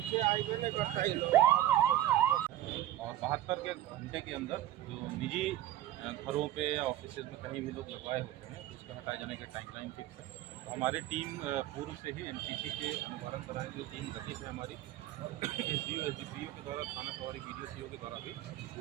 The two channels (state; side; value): quieter; left; 13.8 dB